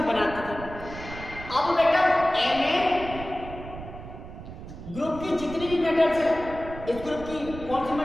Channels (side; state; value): right; noise; rumble, 12 dB below the sound